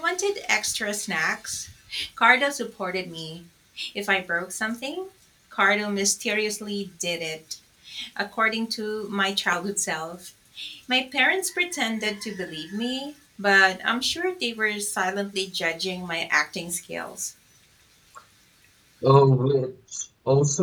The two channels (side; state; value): both; identical; correlation 1.00